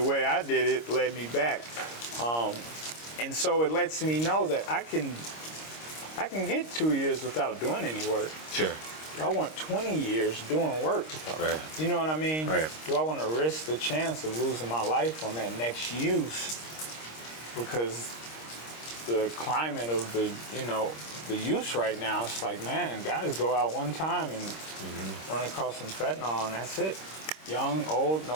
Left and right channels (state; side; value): late; right; 26 ms